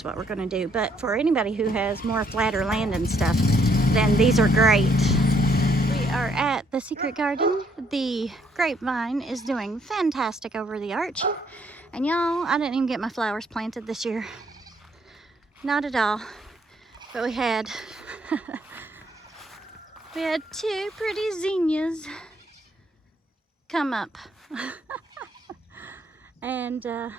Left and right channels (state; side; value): normal; both; correlation 0.69